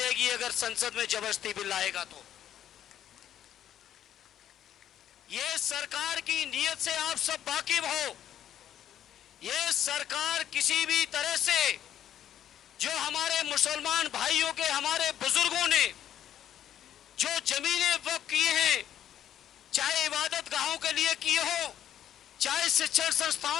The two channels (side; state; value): right; quieter; 10.7 dB